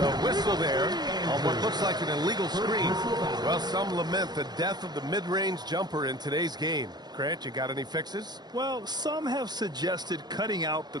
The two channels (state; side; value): late; left; 0.20 ms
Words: whistle there on what looks like an illegal screen. Well, some lament the death of the mid-range jumper in today's game. Grant, you got any fixes? Well, some have suggested cutting out the